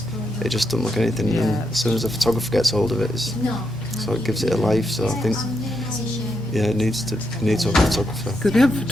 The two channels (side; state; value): both; normal; correlation 0.82